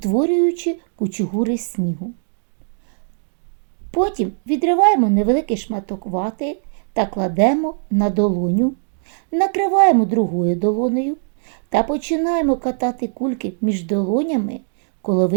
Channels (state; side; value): silent; left; digital silence